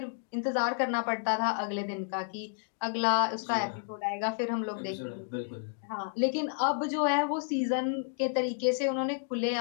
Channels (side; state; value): right; silent; 57 dB below the other